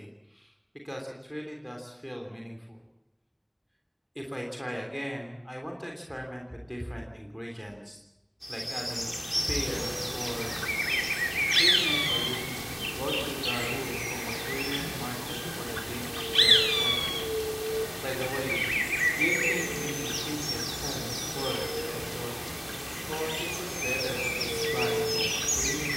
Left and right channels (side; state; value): both; identical; correlation 1.00